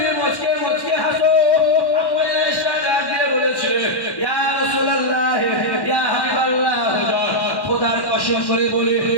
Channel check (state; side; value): late; right; 1.1 ms